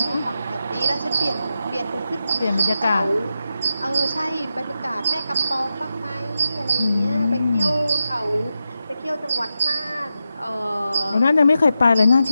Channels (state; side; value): inverted; both; correlation -0.89